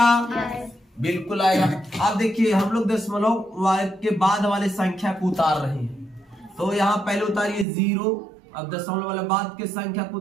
बिल्कुल आएगा। अब देखिए हम लोग दशमलव के बाद वाले संख्या को उतार रहे हैं। तो यहाँ पहले उतारिए 0, अब दशमलव वाले बाद के संख्या को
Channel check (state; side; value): drops out; left; at 7.7 s